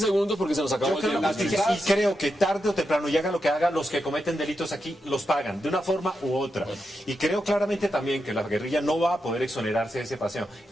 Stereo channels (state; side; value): normal; both; correlation 0.86